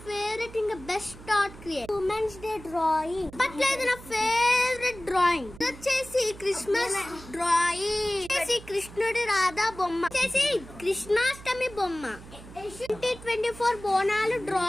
ఫేవరెట్ ఇంకా best art create. Women's day drawing అప్పట్లో ఇది నా ఫేవరెట్ డ్రాయింగ్. వచ్చేసి క్రిస్మస్ డ్రాయింగ్, వచ్చేసి కృష్ణుడి రాధా బొమ్మ, వచ్చేసి కృష్ణాష్టమి బొమ్మ, 2024 బోనాలు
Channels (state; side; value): noise; right; hum, 17 dB below the sound